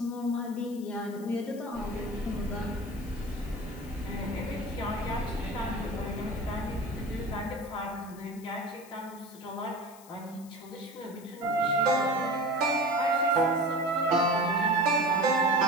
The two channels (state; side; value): noise; left; hiss, 21 dB below the sound